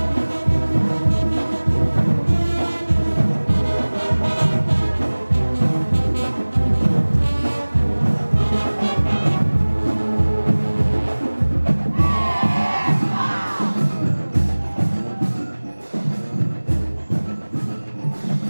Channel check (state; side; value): inverted; both; correlation -1.00